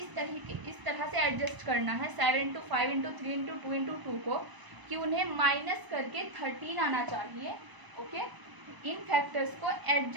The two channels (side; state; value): left; late; 1.0 ms